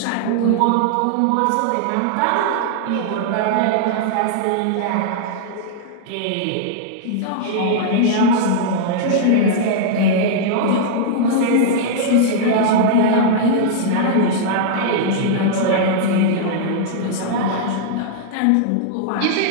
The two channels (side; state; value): both; different; correlation -0.01